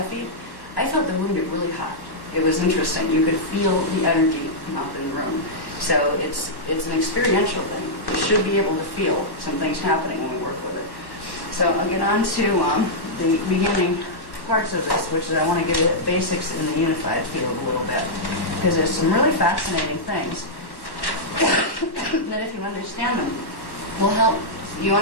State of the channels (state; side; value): late; right; 1.1 ms